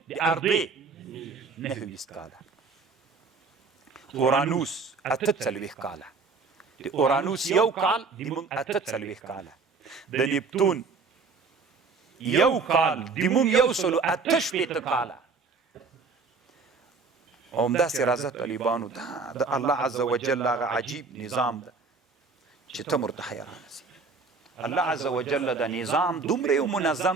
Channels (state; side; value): quieter; left; 4.5 dB